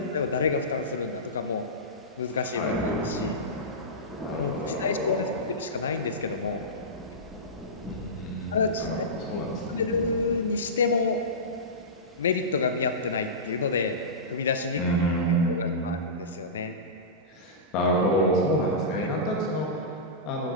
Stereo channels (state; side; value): normal; both; correlation -0.18